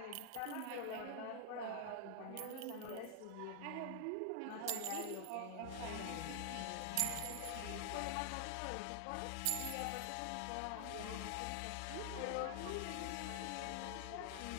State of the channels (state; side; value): different; both; correlation 0.00